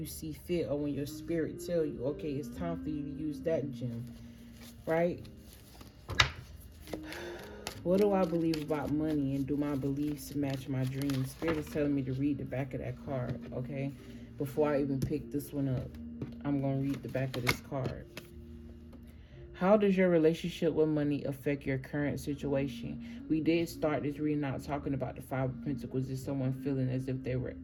see fit, or when your spirit tell you, okay, it's time for you to use that gem, right? What do I believe about money, and do my beliefs match my dreams? Spirit is telling me to read the back of that card, okay? Before I even pick this one up, I'm going to read the back of this card. How does your relationship with money affect your current situation? We did start this reading out talking about the Five of Pentacles. Is someone feeling as if they were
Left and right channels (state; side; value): identical; both; correlation 1.00